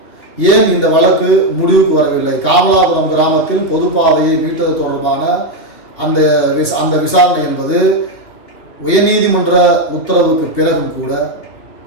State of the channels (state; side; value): late; right; 2.9 ms